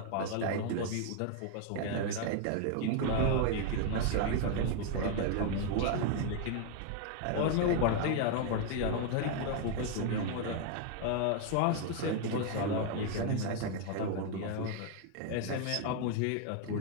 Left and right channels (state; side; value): different; both; correlation 0.00